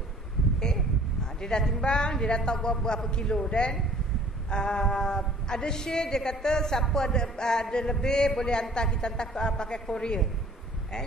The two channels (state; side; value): normal; both; correlation 0.52